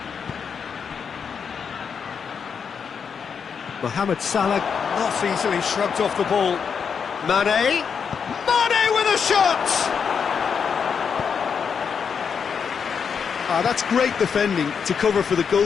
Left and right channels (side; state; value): right; quieter; 6.5 dB